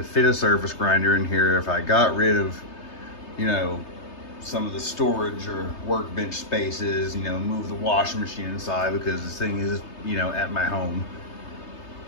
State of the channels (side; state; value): right; late; 3.3 ms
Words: fit a surface grinder in here if I got rid of, you know, some of the storage or workbench spaces, you know, move the washing machine inside, because this thing is, you know, at my home.